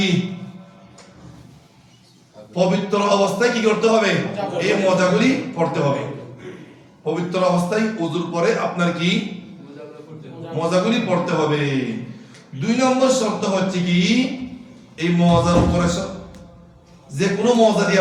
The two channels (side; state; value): both; identical; correlation 1.00